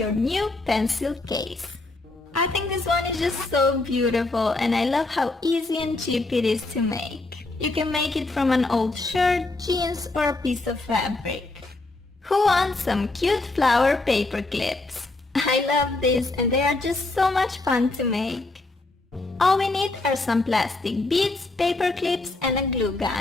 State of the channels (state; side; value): quieter; right; 3.1 dB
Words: new pencil case. I think this one is just so beautiful and I love how easy and cheap it is to make. You can make it from an old shirt, jeans or a piece of fabric. Who wants some cute flower paper clips? I love these and they are just so much fun to make. All we need are some plastic beads, paper clips and a glue